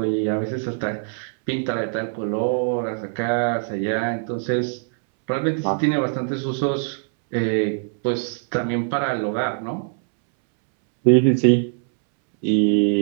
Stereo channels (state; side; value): silent; left; 64 dB below the other